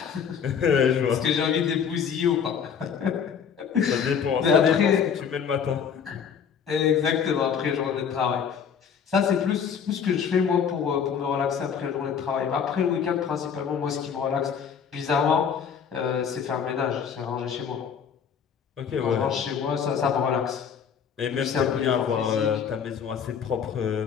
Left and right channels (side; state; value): right; quieter; 7.2 dB